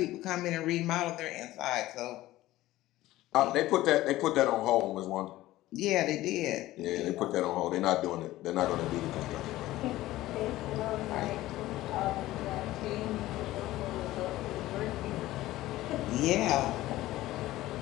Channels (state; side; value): quieter; right; 16.3 dB